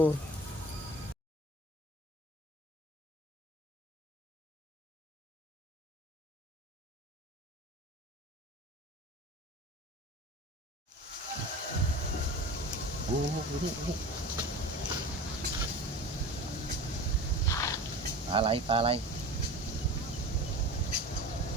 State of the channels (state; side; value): normal; both; correlation 0.35